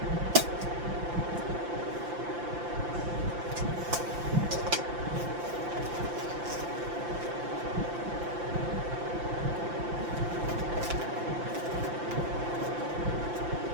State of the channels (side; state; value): left; late; 5.8 ms